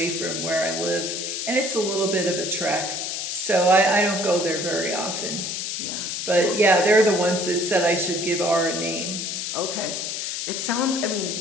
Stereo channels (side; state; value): left; noise; hiss, 3 dB below the sound